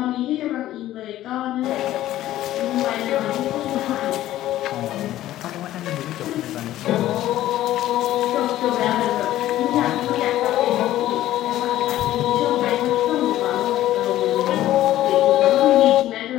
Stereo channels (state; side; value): quieter; right; 14.0 dB